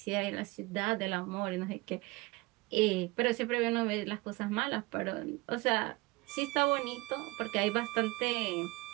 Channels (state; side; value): quieter; left; 23.2 dB